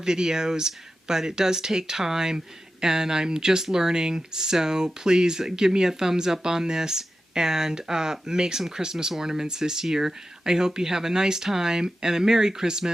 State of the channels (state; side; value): normal; both; correlation 0.92